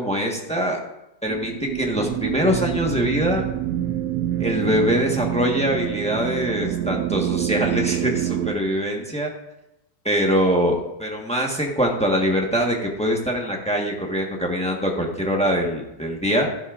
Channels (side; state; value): both; normal; correlation 0.28